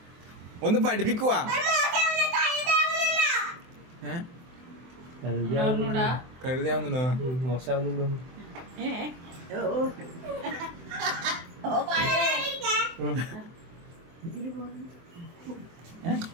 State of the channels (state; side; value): late; left; 24 ms